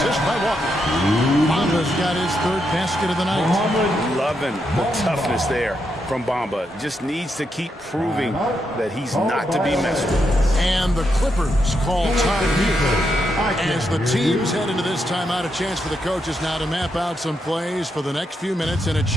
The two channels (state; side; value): normal; both; correlation 0.81